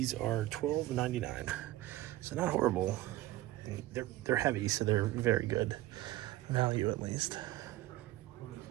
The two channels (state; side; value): quieter; left; 16.3 dB